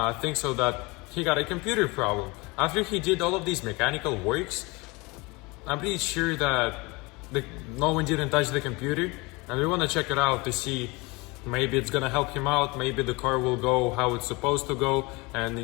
think so that he got a computer problem. After he did all of these mechanical works, I'm pretty sure that no one didn't touch the computer, and we want to check it out to see maybe it's gonna help him out, maybe the car will go how it's supposed to go and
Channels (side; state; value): right; quieter; 25.4 dB